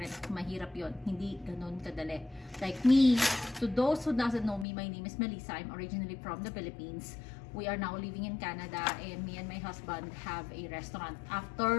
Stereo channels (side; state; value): right; drops out; at 4.7 s